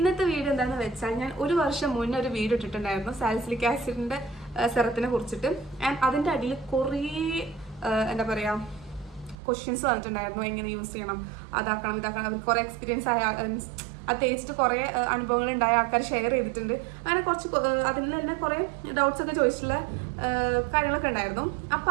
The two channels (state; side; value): drops out; left; at 9.3 s